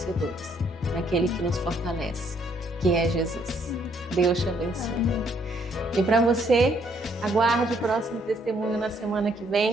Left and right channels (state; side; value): normal; both; correlation 0.68